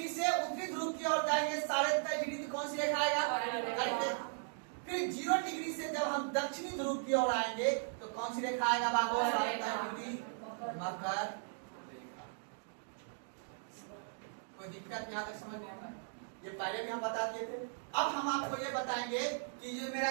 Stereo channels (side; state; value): left; silent; digital silence